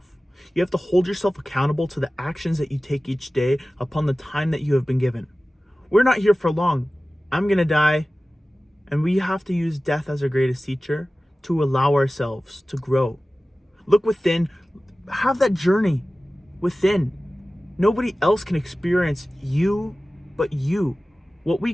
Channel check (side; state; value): both; normal; correlation 0.96